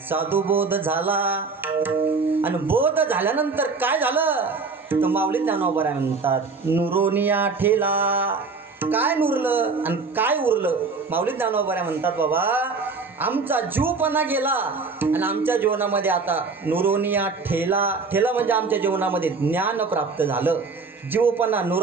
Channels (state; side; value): quieter; left; 4.4 dB